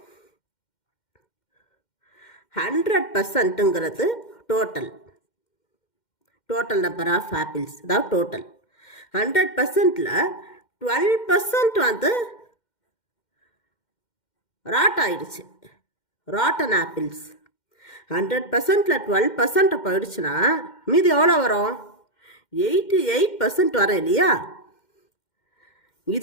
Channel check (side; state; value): right; late; 2.1 ms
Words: 100%ங்கிறது டோட்டல் நம்பர் ஆஃப் ஆப்பிள்ஸ், அதாவது டோட்டல். 100%ல் 12% வந்து ராட் ஆயிடுச்சு, ராட்டன் ஆப்பிள்ஸ். 100%ல் 12% போயிடுச்சுன்னா மீதி எவ்வளோ வரும்? 88% வரும் இல்லையா?